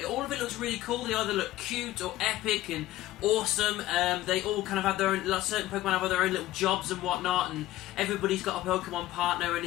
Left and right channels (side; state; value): right; quieter; 15.5 dB